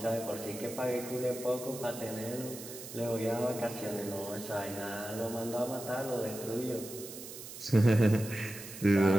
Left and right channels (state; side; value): noise; right; hiss, 12 dB below the sound